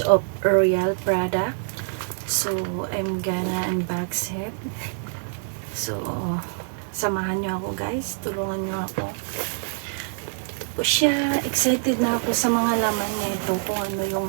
of Royal product. So I'm gonna unbox it. So samahan nyo ako guys, tulungan nyo ako. Po siya, excited na ako sa mga laman nito, kung ano yung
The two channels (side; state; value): left; silent; digital silence